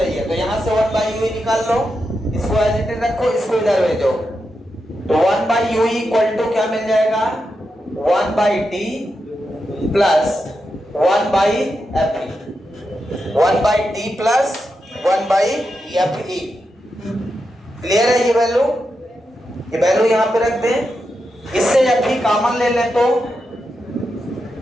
तो यहां से 1 बाई यूई निकाल लो, इसको एज इट इज रखो, इसको इधर भेजो। तो 1 बाई यूई इक्वल टू क्या मिल जाएगा? 1 by T plus 1 by F E. 1 by T plus 1 by F E. Clear है? ये वैल्यू यहां पे रख दें। इससे एफ ई कॉमन ले लें तो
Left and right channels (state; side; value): normal; both; correlation 0.87